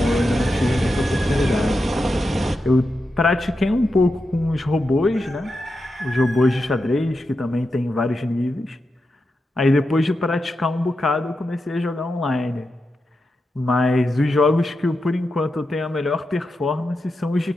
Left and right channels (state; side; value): normal; both; correlation 0.88